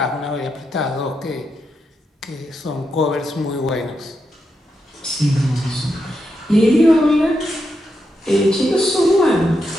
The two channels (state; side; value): normal; both; correlation 0.84